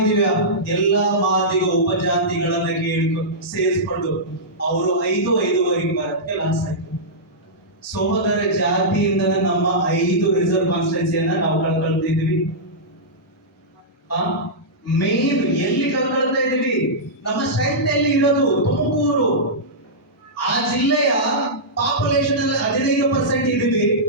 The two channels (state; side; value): normal; both; correlation -0.13